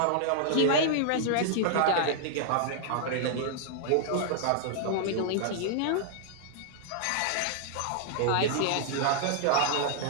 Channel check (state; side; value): different; both; correlation -0.01